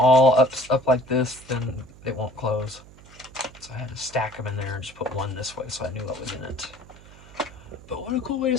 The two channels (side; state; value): right; noise; hum, 21 dB below the sound